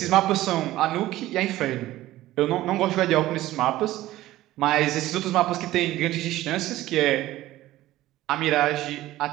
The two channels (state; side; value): quieter; left; 15.7 dB